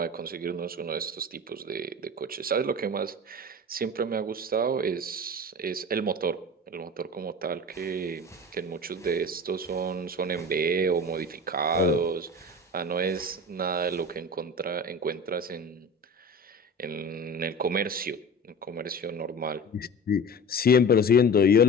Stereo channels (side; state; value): both; normal; correlation 0.34